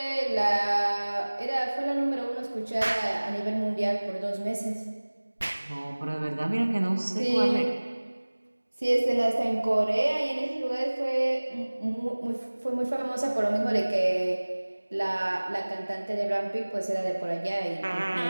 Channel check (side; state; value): both; inverted; correlation -1.00